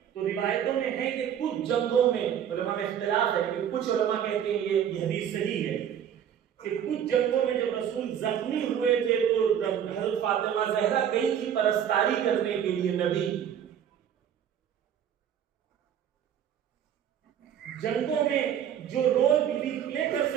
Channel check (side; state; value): left; quieter; 9.2 dB